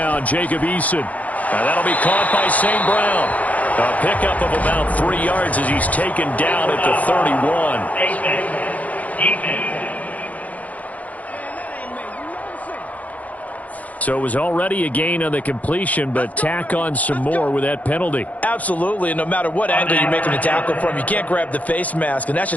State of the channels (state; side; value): late; right; 0.073 ms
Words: Jacob Eason. Now that'll be caught by St. Brown. A pickup of about 3 yards as he's taken down at the 31. So it was already a gain on the completion, but tack on some more with that penalty. Absolutely, and no matter what angle you're making the tackle from, you can't grab the face mask, and that's